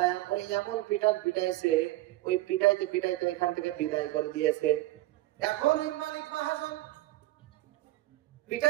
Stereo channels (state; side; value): quieter; left; 17.3 dB